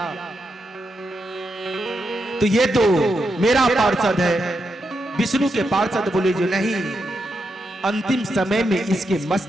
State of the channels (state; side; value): normal; both; correlation 0.84